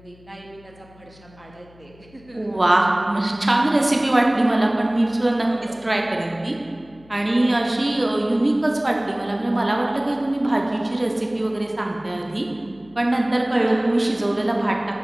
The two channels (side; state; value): left; noise; hum, 26 dB below the sound